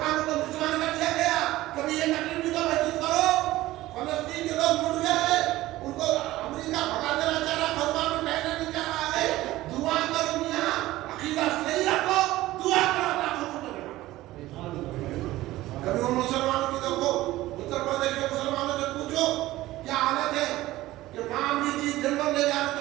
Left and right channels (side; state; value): left; quieter; 16.7 dB